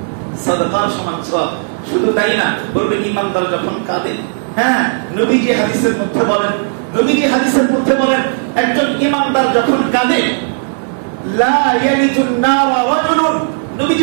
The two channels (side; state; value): left; silent; digital silence